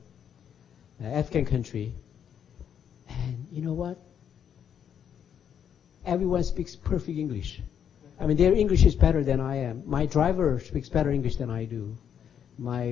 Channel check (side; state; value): right; quieter; 8.6 dB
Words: African country. And you know what? Everyone speaks perfect English. I mean, their English is better than I am. My driver speaks better English than I do.